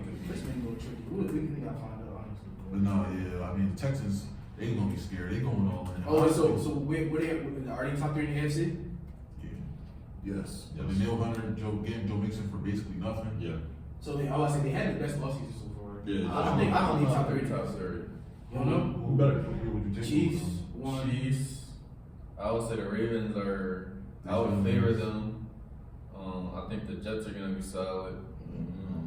could be. This man go tricky. We gotta find out honestly. But no, yeah, I mean the Texans, they gonna be scared. They going all in. Oh, so where they are they top 3 in the AFC? Yeah. Yes. Yes. The Neil Hunter, Joe Mixon for basically nothing. Yeah. So I say they had the best offseason so far. Yeah. I don't need top 3. top 3. You don't know? Who better compete with the Chiefs. 1. Chiefs. I would say the Ravens are. I would favor them. I think the Jets are gonna be solid.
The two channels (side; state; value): both; identical; correlation 1.00